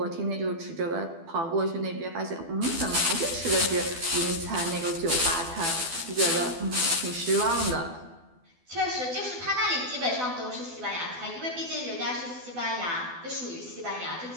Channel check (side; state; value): left; late; 12 ms